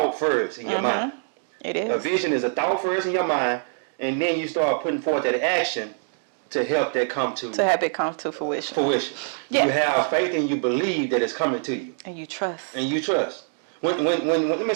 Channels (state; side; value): silent; left; digital silence